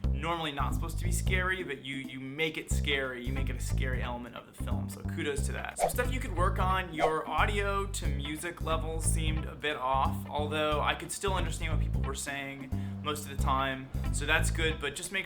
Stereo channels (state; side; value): identical; both; correlation 1.00